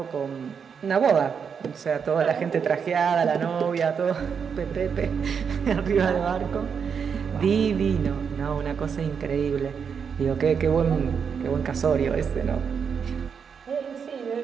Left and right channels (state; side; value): quieter; left; 6.6 dB